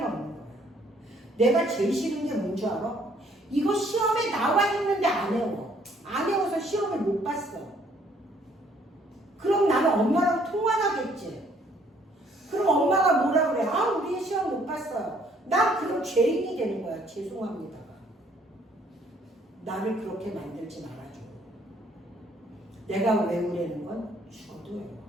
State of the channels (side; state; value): both; normal; correlation 0.63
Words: 없는 거야. 내가 제일 싫은 게 뭔 줄 알아? 이거 시험에 나와 있는데 안 외워. 안 외워서 시험을 못 봤어. 그럼 나는 엄마랑 통화하겠지. 그럼 엄마가 뭐라 그래? 아, 우리 시험 못 봤어요. 나 그럼 죄인이 되는 거야. 죄송합니다가. 나를 그렇게 만들지 말아줘. 내가 외우려는 건 죽어도 외워.